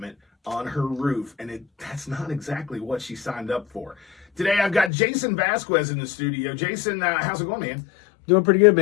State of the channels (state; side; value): drops out; right; at 4.9 s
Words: on her roof, and that's not exactly what she signed up for. Today, I've got Jason Vasquez in the studio. Jason, how's it going, man? Doing pretty good,